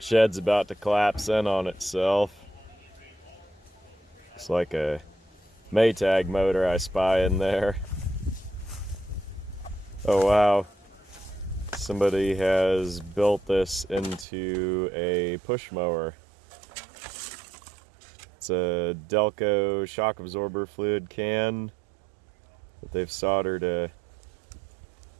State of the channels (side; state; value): left; drops out; at 14.2 s